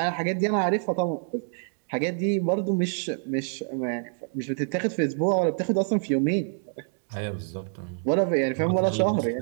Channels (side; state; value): left; silent; digital silence